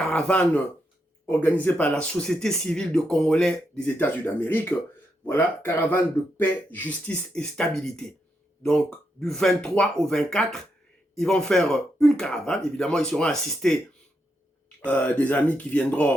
organisée par la société civile de Congolais des États-Unis d'Amérique. Voilà, caravane de paix, justice et stabilité. Donc, du 23 au 24, ils vont faire une caravane. Évidemment, ils seront assistés des amis qui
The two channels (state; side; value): normal; both; correlation 0.82